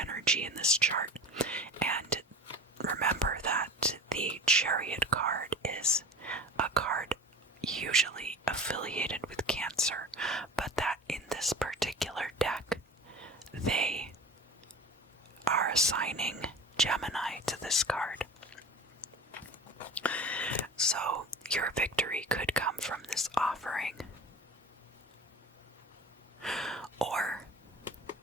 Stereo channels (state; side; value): normal; both; correlation 0.36